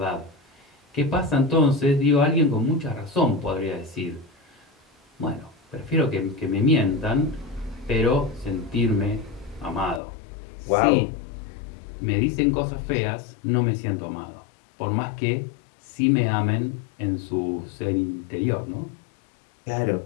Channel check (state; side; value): drops out; right; at 10.0 s